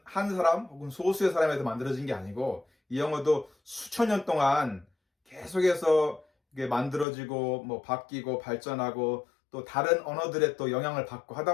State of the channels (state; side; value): drops out; right; at 7.1 s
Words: 한 사람 혹은 소수의 사람에서 만들어진 게 아니고, 이 영어도 수천 년 동안 계속해서 이게 만들어지고 뭐 바뀌고 발전하고 또 다른 언어들의 또 영향을 받고